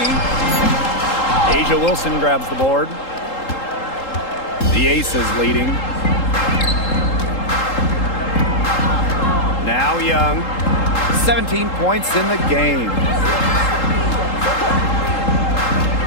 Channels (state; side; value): late; right; 3.8 ms